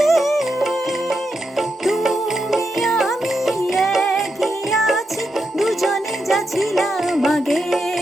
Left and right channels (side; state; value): both; normal; correlation 0.85